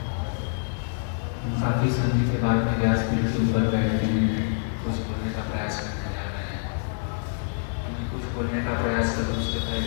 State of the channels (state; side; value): silent; right; digital silence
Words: काफ़ी समय के बाद में व्यासपीठ के ऊपर बैठते हैं, कुछ बोलने का प्रयास करने जा रहे हैं। मैं कुछ बोलने का प्रयास करूँ उससे